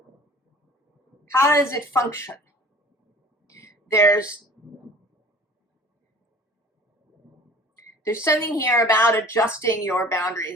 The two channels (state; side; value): normal; both; correlation 0.46